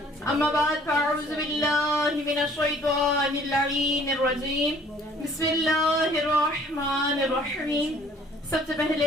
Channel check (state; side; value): normal; both; correlation 0.56